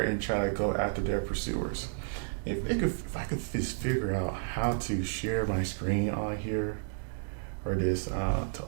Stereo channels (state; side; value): silent; left; digital silence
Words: and tried to go after their pursuers? If I could just figure out how to share my screen on here, or this to